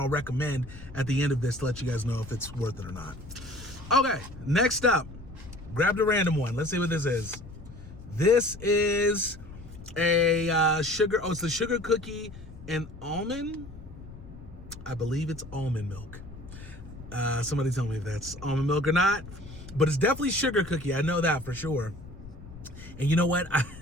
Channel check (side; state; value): left; noise; rumble, 16 dB below the sound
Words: recommend at the end of this to let you guys know if it's worth it or not. Okay, next up, grabbed a random one. Let's see what this is. This is a sugar. Oh, it's the sugar cookie and almond. I believe it's almond milk. Somebody tell me if that's almond milk or not, but it's definitely sugar cookie. I know that for sure. And you know what?